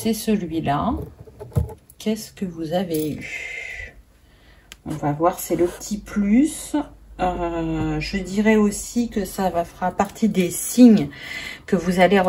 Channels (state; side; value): identical; both; correlation 1.00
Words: celui-là. Qu'est-ce que vous avez eu? On va voir, c'est le petit plus. Je dirais aussi que ça fera partie des signes que vous allez